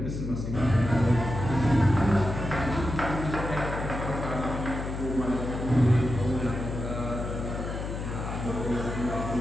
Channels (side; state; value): left; noise; hum, 5 dB below the sound